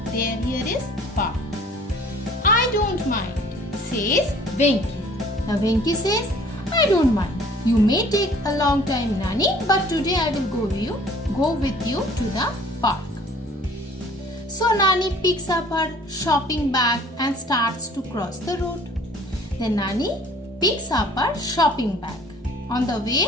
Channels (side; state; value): both; normal; correlation 0.53